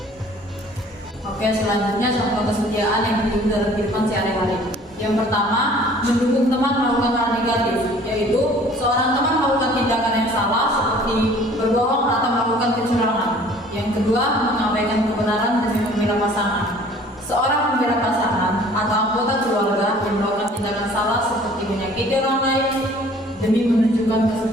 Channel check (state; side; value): normal; both; correlation 0.52